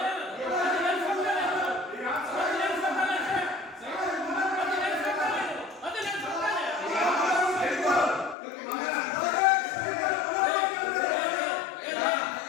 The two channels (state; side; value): drops out; right; at 8.3 s